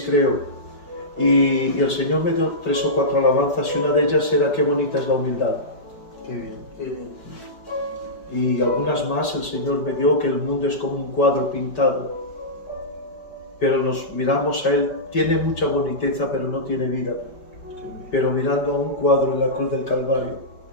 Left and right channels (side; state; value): right; late; 5.2 ms